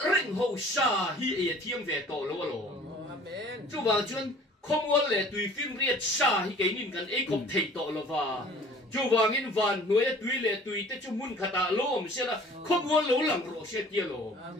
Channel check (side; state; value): both; normal; correlation 0.50